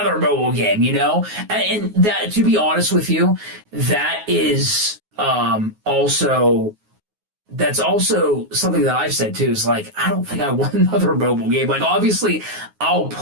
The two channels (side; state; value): left; late; 9.5 ms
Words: mobile game, you know? And that, to be honest with you, that is also, that's also something that I've said too, is like, I don't think I want another mobile game. Like, obviously, I'll